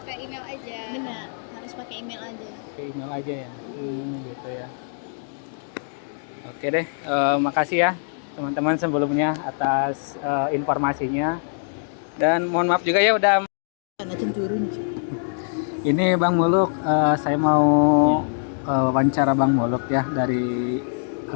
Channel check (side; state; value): right; silent; digital silence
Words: email aja. Benar, harus pakai email aja. Oke, email aja ya. Gitu ya. Oke deh, makasih ya teman-teman sebelumnya atas informasinya. Dan mohon maaf juga ya udah. Ini Bang Muluk, saya mau wawancara Bang Muluk ya dari